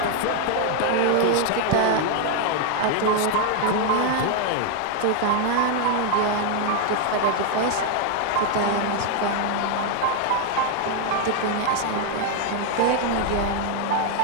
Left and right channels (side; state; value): both; different; correlation 0.00